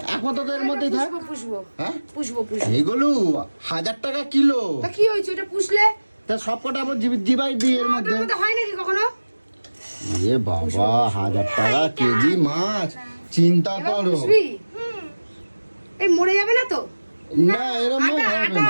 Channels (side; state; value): both; inverted; correlation -1.00